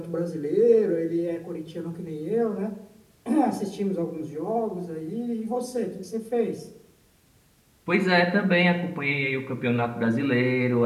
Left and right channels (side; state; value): both; identical; correlation 1.00